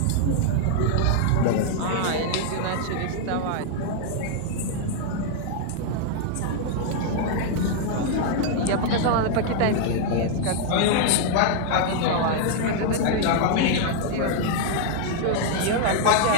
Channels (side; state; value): both; different; correlation 0.00